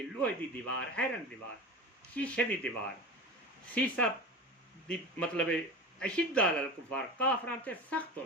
लोहे की दीवार आयरन दीवार शीशे की दीवार सीसा दी मतलब अशिद्दा अलल कुफार काफरां ते सख्त हो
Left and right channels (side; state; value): both; normal; correlation 0.31